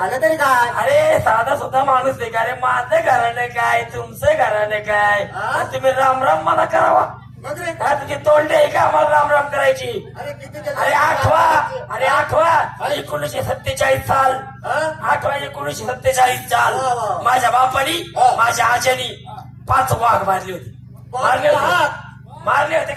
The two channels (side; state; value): both; identical; correlation 1.00